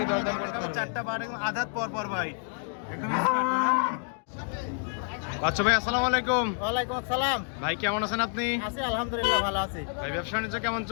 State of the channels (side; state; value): right; silent; 58 dB below the other